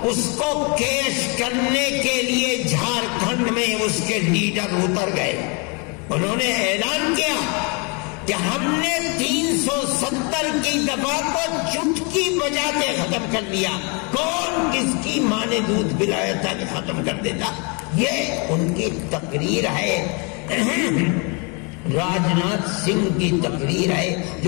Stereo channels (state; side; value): quieter; right; 33.2 dB